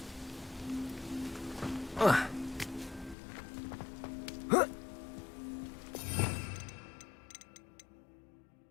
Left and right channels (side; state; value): right; drops out; at 3.2 s